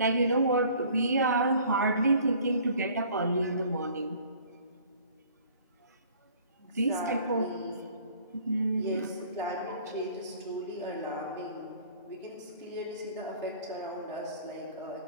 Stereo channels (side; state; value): both; inverted; correlation -0.52